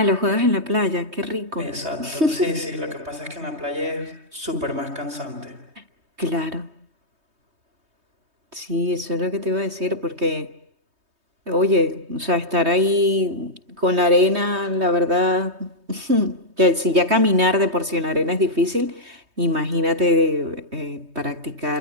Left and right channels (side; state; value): left; late; 3.2 ms